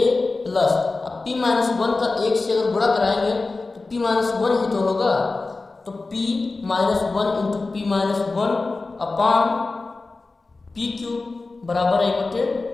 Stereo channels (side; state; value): right; quieter; 3.6 dB